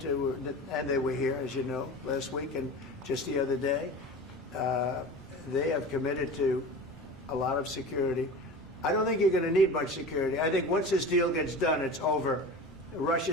and they were here, as you know, last week and just the other day, they have committed to a lot of security. I don't think you're going to need much security. I think once this deal gets done, it's over.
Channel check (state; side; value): normal; both; correlation 0.33